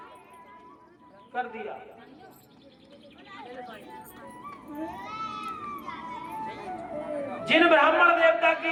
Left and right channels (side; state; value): both; identical; correlation 1.00